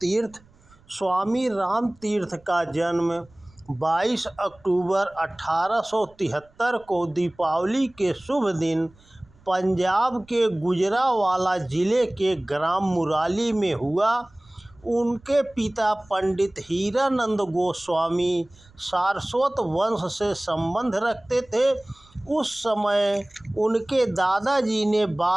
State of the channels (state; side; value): noise; right; rumble, 29 dB below the sound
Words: स्वामी रामतीर्थ का जन्म 22 अक्टूबर 1873 को दीपावली के शुभ दिन पंजाब के गुजरांवाला जिले के ग्राम मुराली में हुआ। उनके पिता पंडित हीरानंद गोस्वामी सारस्वत वंश से संबंध रखते थे। उस समय उनके दादाजी ने